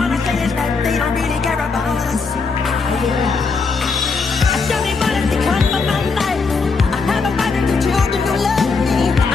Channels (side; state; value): right; quieter; 4.6 dB